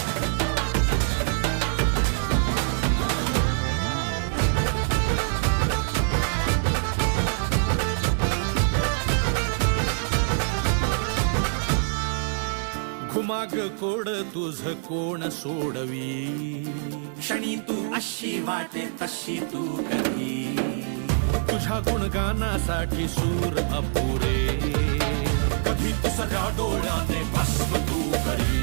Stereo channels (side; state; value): left; silent; 62 dB below the other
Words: घुमाग कोड तुझ कोण सोडवी क्षणी तू अशी वाटे तशी तू कधी तुझ्या गुणगानासाठी सूर अपुरे कधी तू सगळ्या डोळ्याने